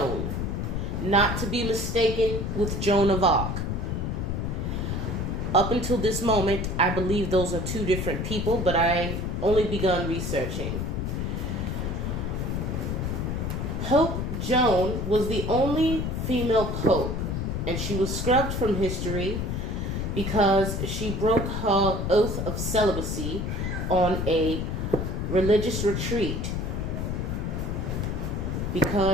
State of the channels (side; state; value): left; noise; rumble, 2 dB below the sound